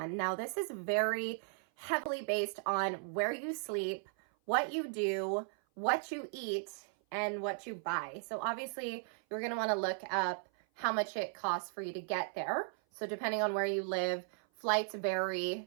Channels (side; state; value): left; silent; 53 dB below the other